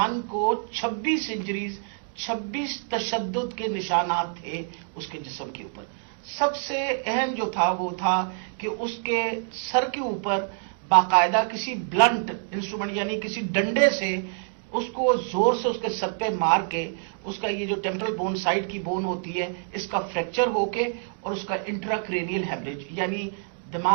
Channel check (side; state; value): left; silent; 61 dB below the other